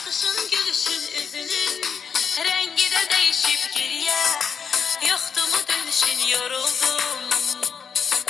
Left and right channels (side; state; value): right; quieter; 6.5 dB